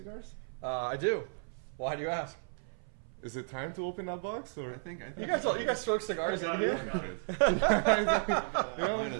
I do. Why do you ask? Is it time to open that box? Or I think you guys smoke cigars in here. Might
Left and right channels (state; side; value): silent; left; 55 dB below the other